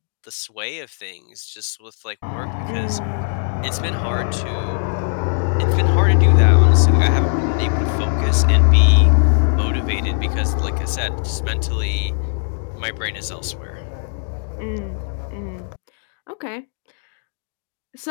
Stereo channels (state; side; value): silent; right; digital silence